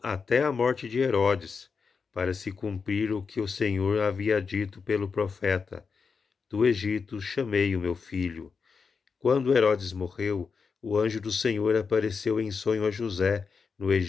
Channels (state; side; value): quieter; right; 5.3 dB